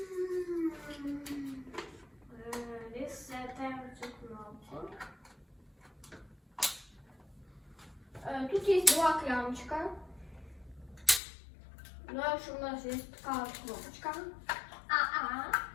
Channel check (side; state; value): right; drops out; at 11.2 s